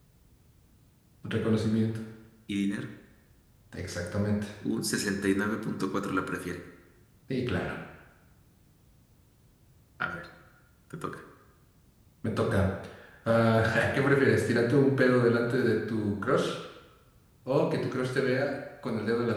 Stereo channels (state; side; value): identical; both; correlation 1.00